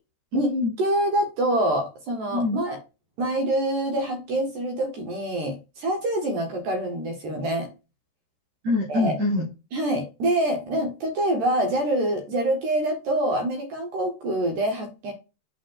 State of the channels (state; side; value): late; left; 13 ms